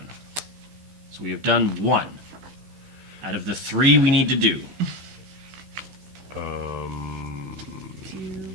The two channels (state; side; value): late; left; 15 ms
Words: So we have done 1 out of the 3 we need to do.